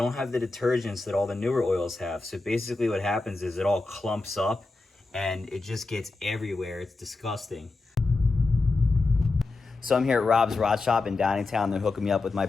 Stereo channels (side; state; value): right; quieter; 3.5 dB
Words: have the detergents that all the newer oils have. So basically what happens is it all clumps up and it just gets everywhere. It's disgusting. So I'm here at Rob's Rod Shop in Downingtown. They're hooking me up with my